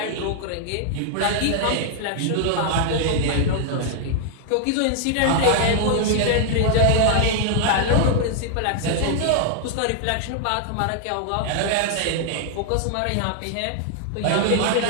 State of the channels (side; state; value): both; different; correlation -0.01